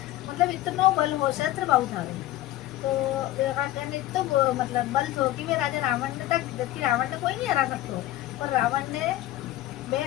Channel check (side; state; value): right; quieter; 15.1 dB